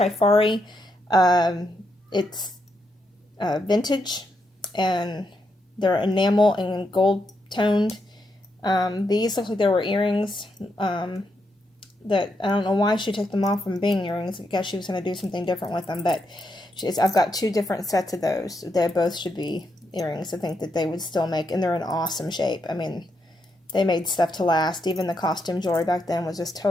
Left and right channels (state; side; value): normal; both; correlation 0.81